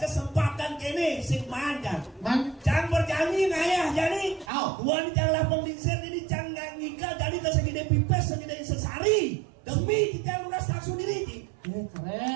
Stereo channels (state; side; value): drops out; left; at 4.5 s